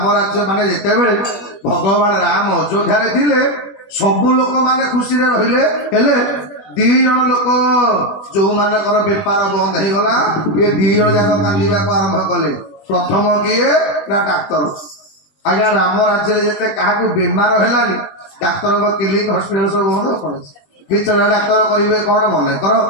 ରାଜ୍ୟ ମାନେ ଯେତେବେଳେ ଭଗବାନ ରାମ ଅଯୋଧ୍ୟାରେ ଥିଲେ ସବୁ ଲୋକମାନେ ଖୁସିରେ ରହିଲେ, ହେଲେ 2 ଜଣ ଲୋକ ଯୋଉମାନଙ୍କର ବେପାର ବନ୍ଦ ହେଇଗଲା ଇଏ 2 ଜଣ ଯାକ କାନ୍ଦିବାକୁ ଆରମ୍ଭ କଲେ। ପ୍ରଥମ କିଏ ନା ଡାକ୍ତର। ଆଜ୍ଞା ରାମ ରାଜ୍ୟରେ ଯେତେ କାହାକୁ ବେମାର ହେଲାନି ଡାକ୍ତରଙ୍କ କ୍ଲିନିକ ହସ୍ପିଟାଲ ସବୁ ବନ୍ଦ ପଡୁଛି। ଭିତରେ ଡାକ୍ତର କରିବେ କଣ ମନେ କର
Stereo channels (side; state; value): right; late; 20 ms